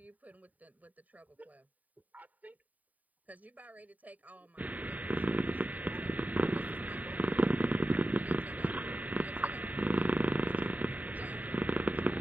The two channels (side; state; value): left; late; 0.074 ms